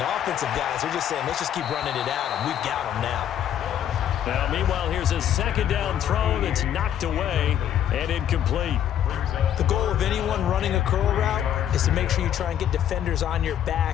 the offensive guys are just saying, let's just keep running it at them. We've got them now. Now, meanwhile, here's a second down throw that's knocked away and incomplete. The goal of anyone running a curl route is to make sure you try and get defenders on your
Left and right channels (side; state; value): right; quieter; 10.3 dB